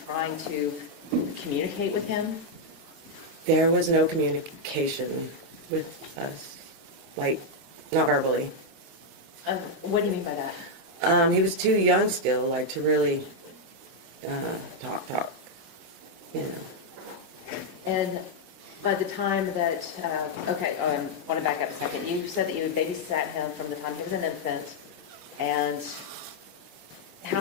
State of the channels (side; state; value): left; late; 11 ms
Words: trying to communicate with him? There was no communication with us, like, not verbally. What do you mean by that? He was too young still, like, to really talk, you know. And by the time that, I want to back up a second. You said that you babysat him from the time he was an infant, and how